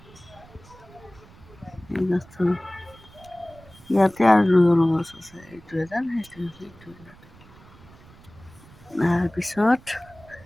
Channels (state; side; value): noise; right; rumble, 23 dB below the sound